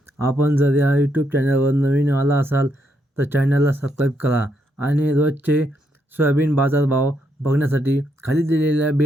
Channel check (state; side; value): normal; both; correlation 0.78